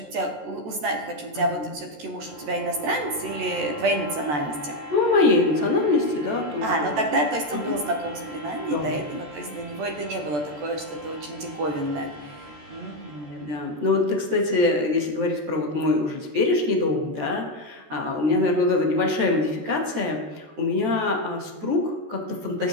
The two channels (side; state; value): left; late; 14 ms